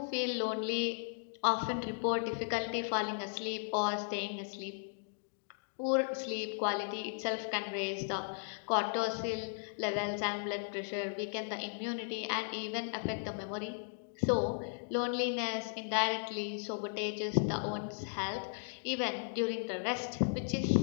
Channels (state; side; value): silent; right; digital silence